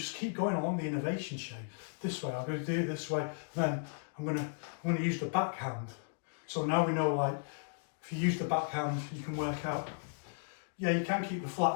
keep going along the innovation chain. This way, I'm going to do it this way, then I'm going to use the backhand. So now we know, like, if you use the backhand, you can work out, yeah, you can keep the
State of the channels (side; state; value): right; silent; digital silence